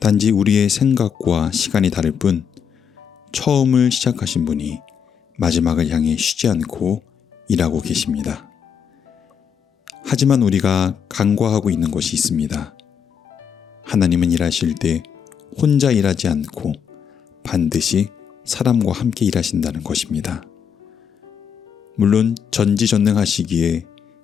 우리의 생각과 시간이 다를 뿐 처음을 시작하신 분이 마지막을 향해 쉬지 않고 일하고 계십니다. 하지만 우리가 간과하고 있는 것이 있습니다. 하나님은 일하실 때 혼자 일하지 않고 반드시 사람과 함께 일하신다는 것입니다. 물론 전지전능하시기에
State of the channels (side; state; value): right; quieter; 7.5 dB